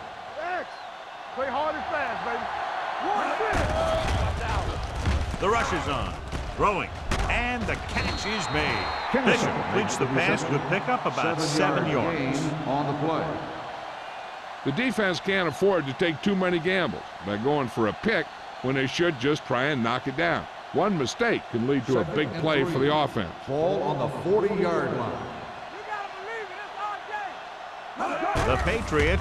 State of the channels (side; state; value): both; identical; correlation 1.00